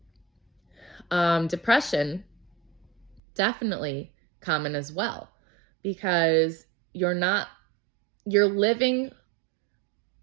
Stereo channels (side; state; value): left; drops out; at 3.2 s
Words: Depression, definitely common as well, because you're living